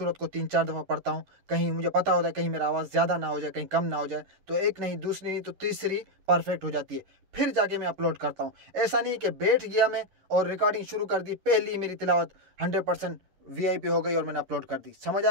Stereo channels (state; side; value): late; left; 11 ms